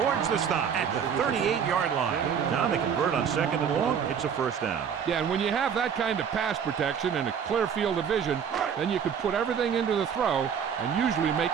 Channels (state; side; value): quieter; left; 7.5 dB